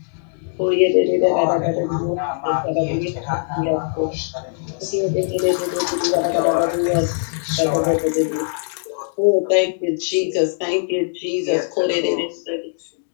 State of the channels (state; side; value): silent; right; digital silence